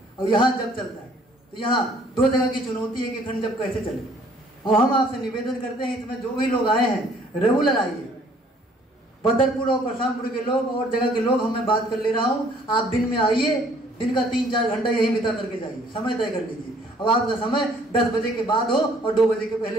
और यहाँ जप चलता है। तो यहाँ 2 जगह की चुनौती है कि अखंड जप कैसे चले। और हम आपसे निवेदन करते हैं, इसमें जो भी लोग आए हैं रेगुलर आइए। बदरपुर और परशुरामपुर के लोग और जगह के लोग, मैं बात कर ले रहा हूँ, आप दिन में आइए, दिन का 3-4 घंटा यही बिता करके जाइए, समय तय कर लीजिए। अब आपका समय 10 बजे के बाद हो और 2 बजे के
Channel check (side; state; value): both; normal; correlation 0.60